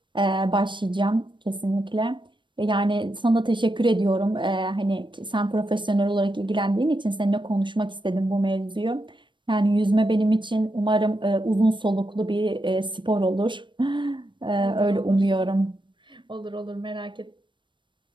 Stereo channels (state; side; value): late; left; 0.23 ms